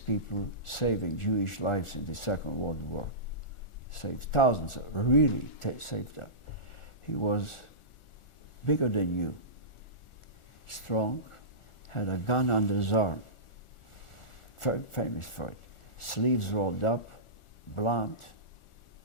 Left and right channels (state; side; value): late; right; 1.4 ms